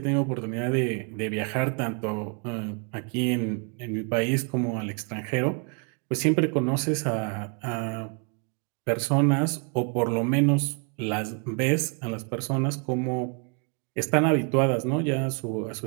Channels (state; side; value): quieter; left; 37.2 dB